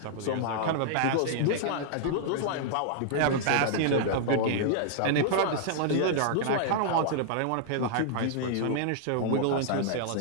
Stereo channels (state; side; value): different; both; correlation -0.01